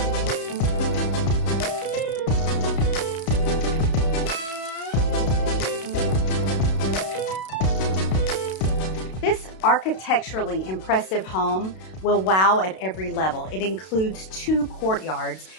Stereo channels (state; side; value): late; right; 32 ms